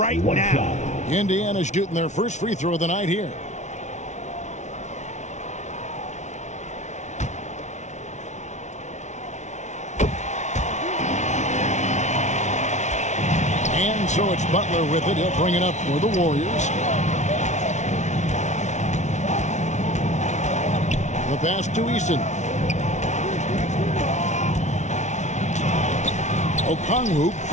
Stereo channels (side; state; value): right; late; 0.34 ms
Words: now. Indiana's shooting their first free throw of the night here. And so it's Butler with it. He'll bring it up for the Warriors. The pass to Eason. Okongwu